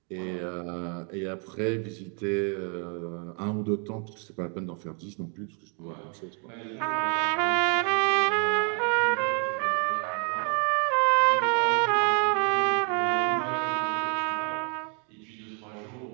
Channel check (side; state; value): left; quieter; 39.0 dB